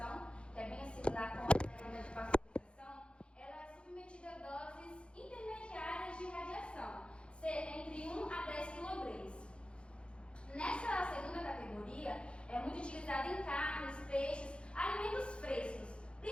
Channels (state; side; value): late; right; 0.057 ms